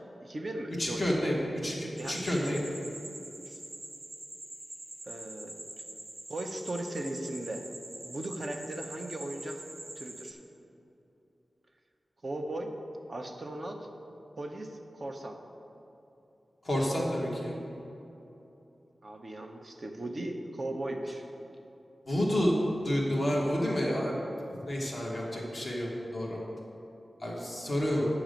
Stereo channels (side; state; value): both; normal; correlation 0.95